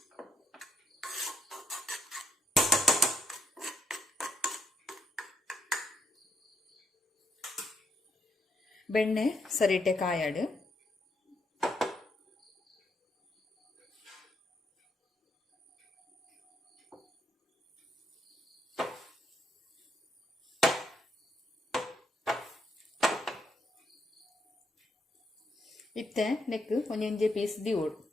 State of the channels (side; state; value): both; normal; correlation 0.74